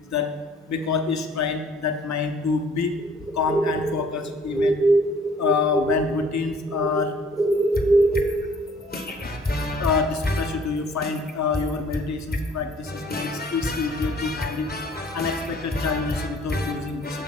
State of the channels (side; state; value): both; normal; correlation 0.56